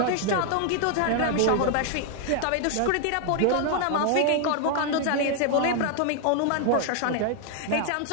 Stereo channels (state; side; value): different; both; correlation 0.00